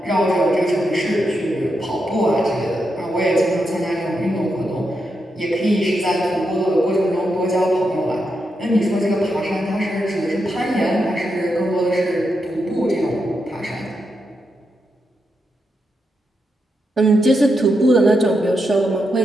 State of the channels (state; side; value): normal; both; correlation 0.84